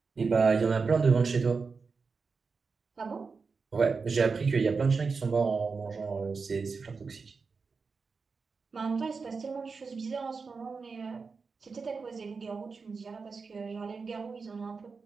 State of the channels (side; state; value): left; quieter; 4.8 dB